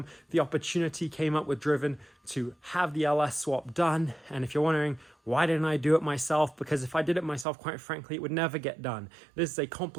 The opportunity came up with Driven to have the LS swap done. And if you're wondering, why didn't I do it myself? Because if I did it myself, quite frankly, it would never get done. This is a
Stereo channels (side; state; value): left; drops out; at 7.5 s